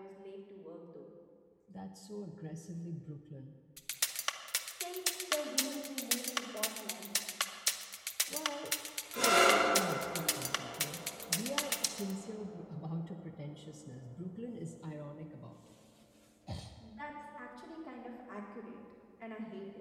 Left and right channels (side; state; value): both; identical; correlation 1.00